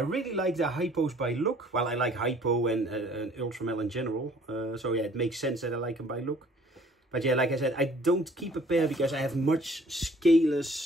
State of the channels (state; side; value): normal; both; correlation 0.56